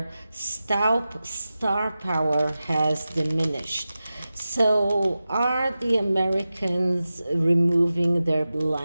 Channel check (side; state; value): both; inverted; correlation -0.94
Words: star power has diminished. So are the Americans removing their